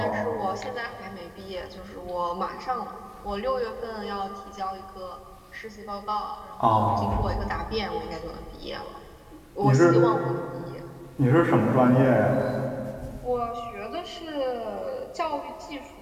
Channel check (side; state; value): both; identical; correlation 1.00